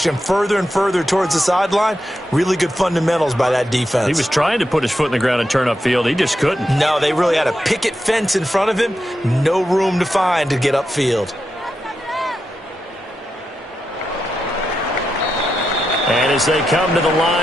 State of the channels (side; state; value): both; normal; correlation 0.87